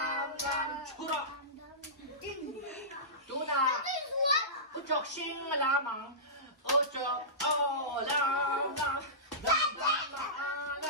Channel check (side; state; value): both; normal; correlation -0.20